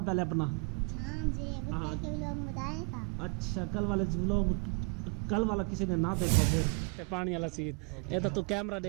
पहले अपना। हाँ अच्छा, कल वाला किसी ने ना देखो फिर पानी वाला सीन। ये तो तू कैमरा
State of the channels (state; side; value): quieter; left; 36.1 dB